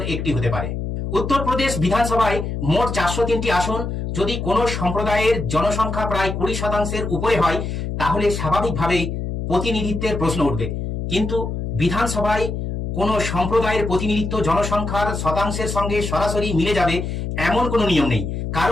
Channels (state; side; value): noise; left; hum, 4 dB below the sound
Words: একটি হতে পারে। উত্তরপ্রদেশ বিধানসভায় মোট 403টি আসন। যদি কোনো সম্প্রদায়ের জনসংখ্যা প্রায় 20%-এর উপরে হয়, তাহলে স্বাভাবিকভাবেই প্রতিনিধিত্বের প্রশ্ন উঠবে। কিন্তু বিধানসভায় কোনো সম্প্রদায়ের প্রতিনিধিত্ব জনসংখ্যার শতাংশের সঙ্গে সরাসরি মিলে যাবে এমন কোনো নিয়ম নেই,